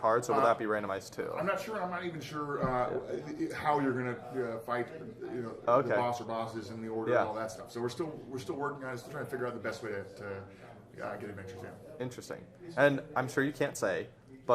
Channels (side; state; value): both; identical; correlation 1.00